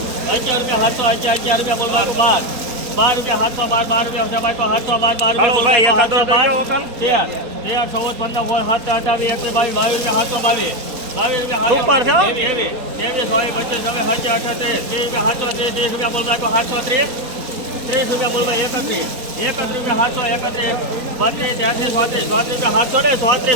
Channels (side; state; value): left; late; 4.2 ms